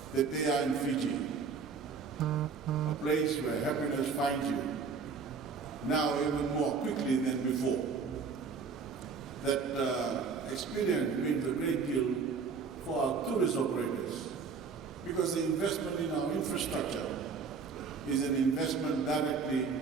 that they are in Fiji, a place where happiness finds you, now even more quickly than before. That experience means a great deal for our tourist operators, because the investment in our infrastructure is an investment directly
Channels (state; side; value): quieter; left; 5.4 dB